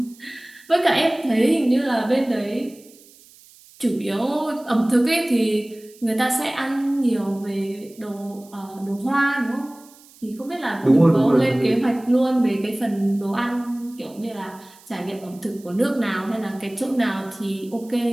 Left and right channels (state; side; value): noise; right; hiss, 25 dB below the sound